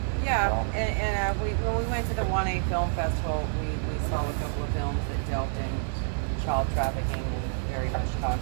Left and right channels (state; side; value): silent; left; digital silence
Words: Yeah, and when we went to the 1A Film Festival, we saw a couple of films that dealt in child trafficking and very much